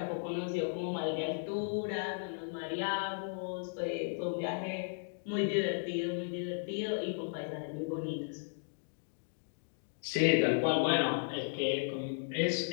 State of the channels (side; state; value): right; silent; digital silence